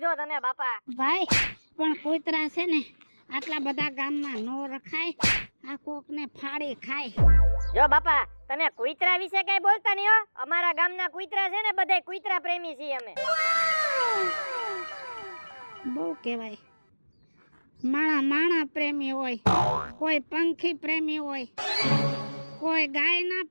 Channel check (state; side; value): inverted; both; correlation -1.00